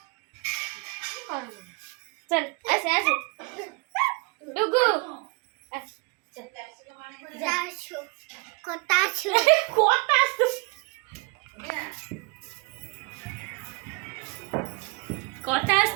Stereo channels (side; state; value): left; quieter; 28.9 dB